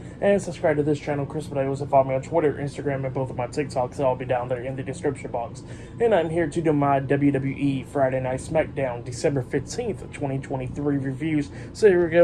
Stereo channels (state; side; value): identical; both; correlation 1.00